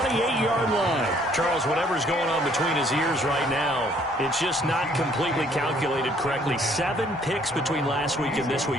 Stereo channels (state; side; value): normal; both; correlation 0.62